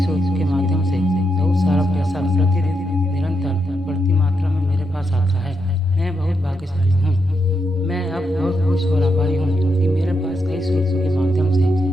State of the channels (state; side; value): normal; both; correlation 0.82